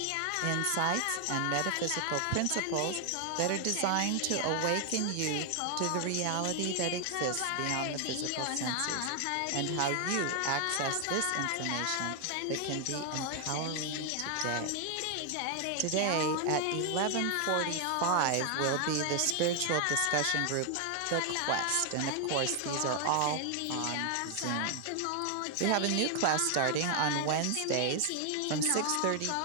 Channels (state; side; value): different; both; correlation 0.00